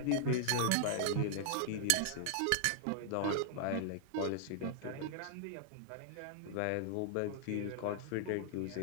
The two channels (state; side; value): different; both; correlation -0.01